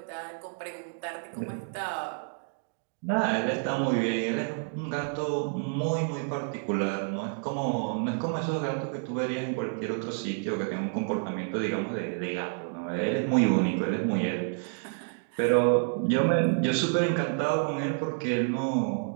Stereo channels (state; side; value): silent; left; 58 dB below the other